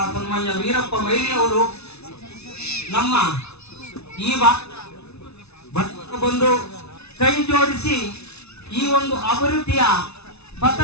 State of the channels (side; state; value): right; late; 0.80 ms